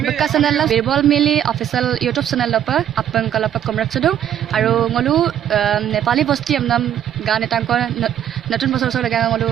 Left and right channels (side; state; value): left; quieter; 10.4 dB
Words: বক্কা চেনেল বিৰবল মিলি অফিচিয়েল ইউটিউব চেনেল লপা আপন কলপা কমৰাক চদু আৰু ngolu নেপালী বস্তি আমনাম গান এটাংকৰ নতুন বছৰ বছৰ লাগা ngolu